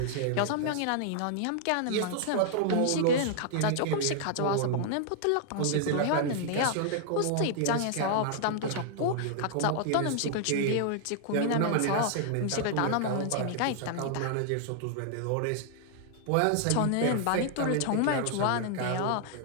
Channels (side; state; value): both; different; correlation 0.00